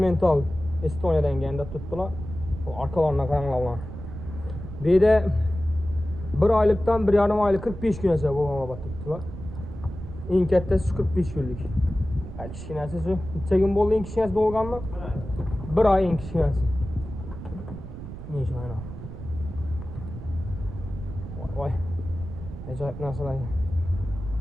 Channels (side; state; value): right; noise; rumble, 10 dB below the sound